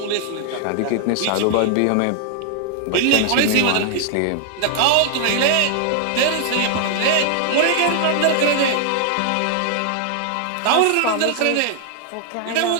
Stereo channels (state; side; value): different; both; correlation 0.00